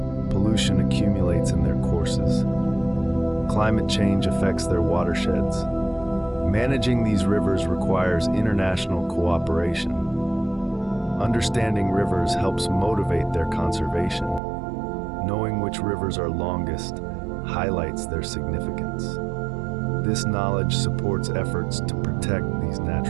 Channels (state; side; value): drops out; left; at 14.4 s